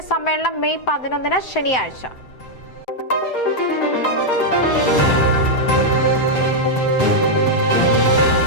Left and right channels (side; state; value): right; late; 7.8 ms